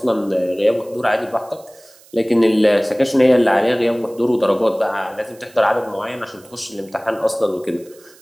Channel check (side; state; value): right; noise; hiss, 26 dB below the sound